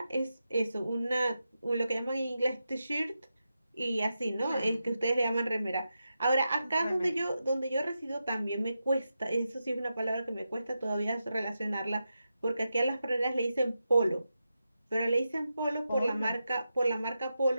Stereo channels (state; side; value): inverted; both; correlation -0.89